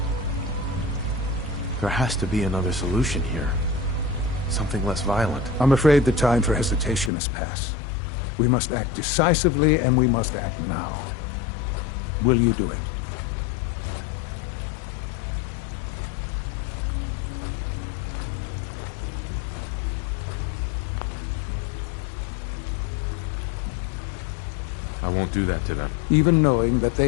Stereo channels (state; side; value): drops out; right; at 7.1 s